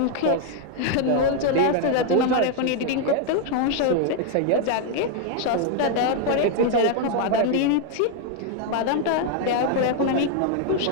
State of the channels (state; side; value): different; both; correlation 0.00